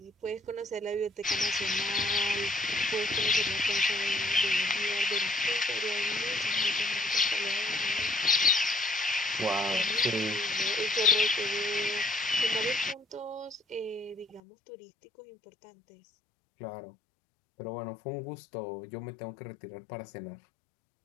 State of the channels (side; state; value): right; drops out; at 14.4 s